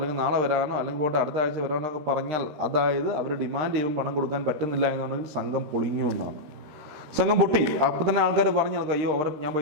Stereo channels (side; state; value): left; late; 13 ms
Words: നാളെ വരാനോ അല്ലെങ്കിൽ പോയിട്ട് അടുത്ത ആഴ്ച വരാനോ ഒക്കെ പറഞ്ഞാൽ, അതായത് അവർ ഡിമാൻഡ് ചെയ്യുമ്പോൾ പണം കൊടുക്കാൻ പറ്റുന്നില്ല എന്നുണ്ടെങ്കിൽ സംഘം പൊളിഞ്ഞു എന്നാണ്. സംഘം പൊട്ടി. അപ്പം തന്നെ ആൾക്കാർ പറഞ്ഞു നടക്കും, അയ്യോ ഞാൻ